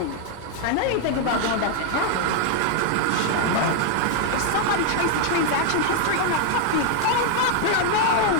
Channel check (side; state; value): both; different; correlation 0.00